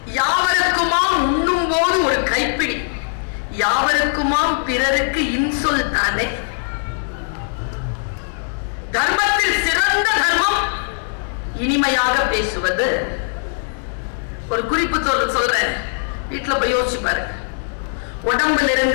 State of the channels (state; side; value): silent; right; digital silence